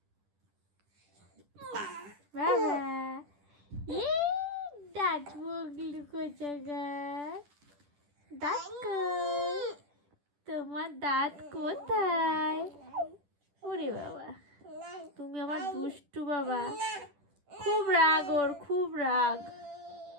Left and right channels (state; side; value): late; left; 10 ms